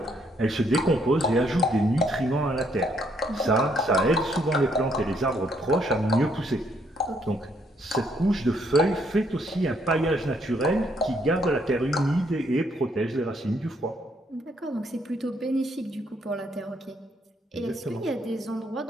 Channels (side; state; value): both; normal; correlation 0.70